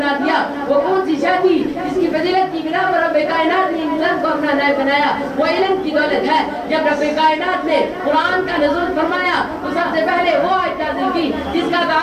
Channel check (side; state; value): both; identical; correlation 1.00